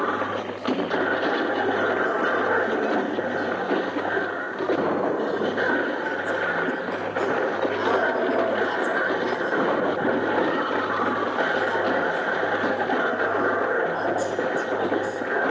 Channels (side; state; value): both; identical; correlation 1.00